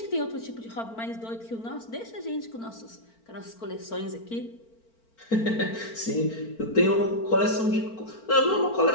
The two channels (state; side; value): late; right; 4.4 ms